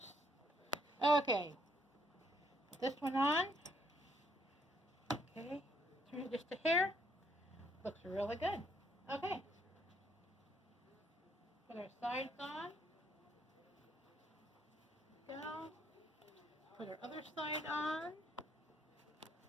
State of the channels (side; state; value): both; normal; correlation 0.69